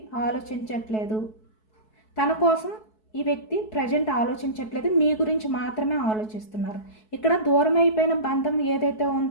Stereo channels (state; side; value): late; right; 4.6 ms